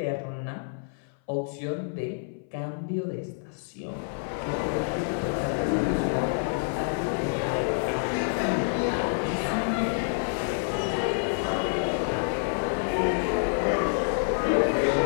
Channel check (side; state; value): right; silent; 58 dB below the other